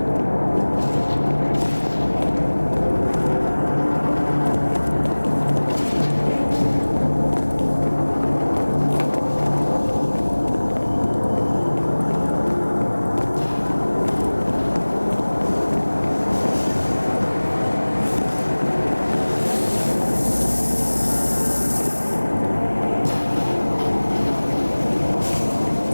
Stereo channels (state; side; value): inverted; both; correlation -1.00